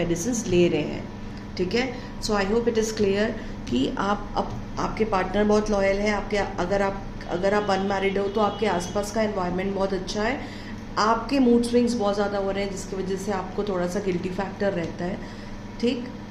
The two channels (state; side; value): identical; both; correlation 1.00